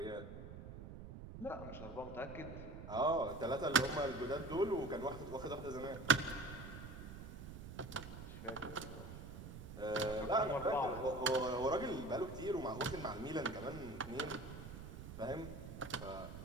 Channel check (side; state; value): right; noise; rumble, 11 dB below the sound